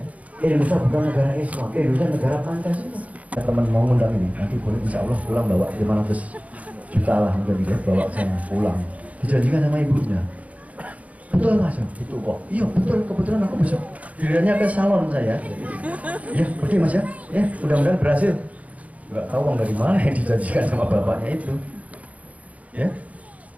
Indonesia bukan negara Islam, Indonesia negara Pancasila. Teman mau ngundang ini, nanti boleh insya Allah pulang bawa 500 juta lah mungkin ya, bawa sana pulang. Dijanjikan sama ibunya. Betul Mas, itu kok. Iya betul, kebetulan aku besok dirinya ke salon saya. Ya, oke Mas ya. Ya, mudah-mudahan berhasil. Nggak tahu uang dari mana yang dijanjikan sama bapaknya itu. Ya.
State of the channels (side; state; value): left; late; 0.069 ms